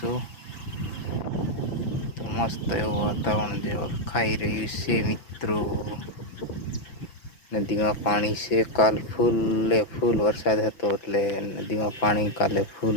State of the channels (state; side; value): late; right; 6.0 ms